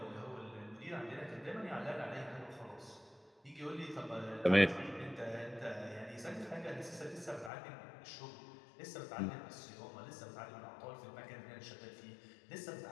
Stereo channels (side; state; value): right; drops out; at 7.5 s